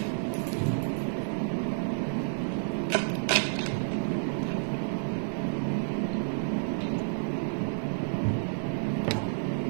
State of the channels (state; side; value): silent; left; 58 dB below the other